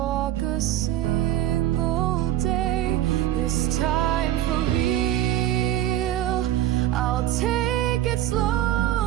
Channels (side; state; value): left; quieter; 12.6 dB